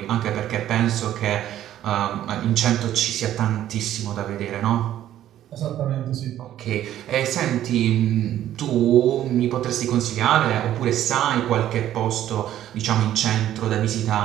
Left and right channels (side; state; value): left; quieter; 12.1 dB